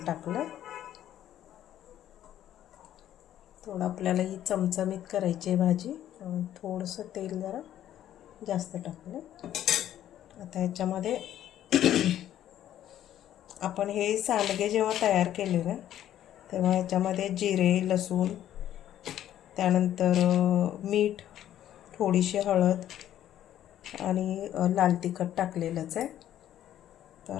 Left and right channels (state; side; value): quieter; right; 11.7 dB